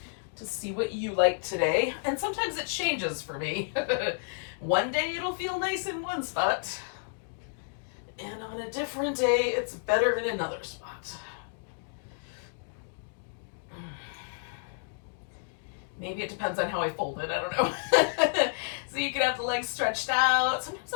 to see what you like today. And sometimes it changes for me. One day it'll feel nice in one spot, and on a different day it's better in another spot. Maybe it depends on how I fold it, I don't know. So you can have the legs stretched out. Sometimes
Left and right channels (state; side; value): silent; right; digital silence